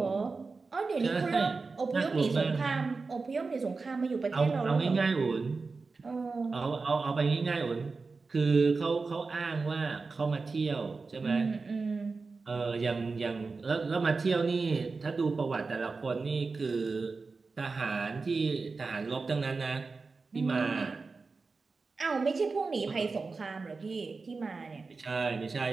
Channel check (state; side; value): quieter; left; 4.2 dB